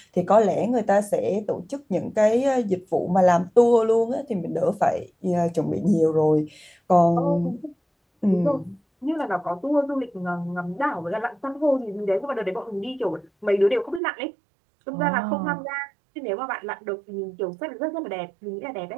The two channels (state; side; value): drops out; left; at 14.0 s